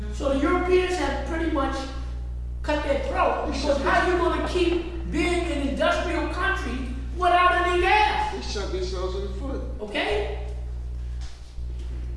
So the Europeans have pretty much cut their throat, because how you gonna keep being an industrial country without any gas? They shot themselves in the foot. Okay?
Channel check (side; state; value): both; identical; correlation 1.00